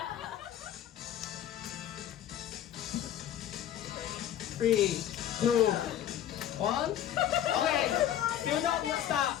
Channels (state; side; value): quieter; right; 11.0 dB